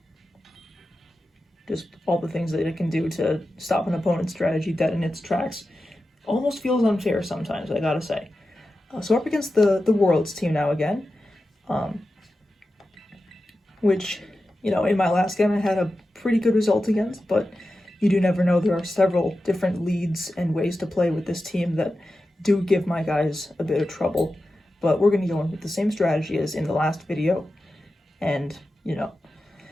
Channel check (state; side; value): normal; both; correlation 0.92